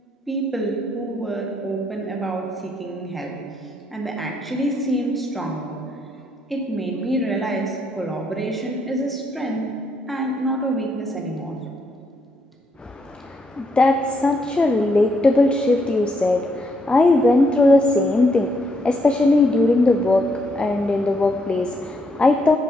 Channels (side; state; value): both; normal; correlation 0.75